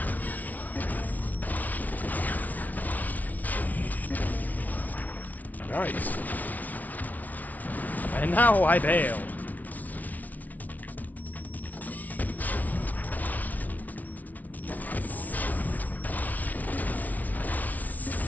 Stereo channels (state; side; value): late; right; 0.075 ms